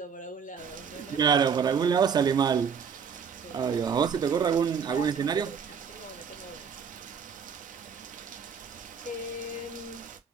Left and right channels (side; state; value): left; quieter; 6.5 dB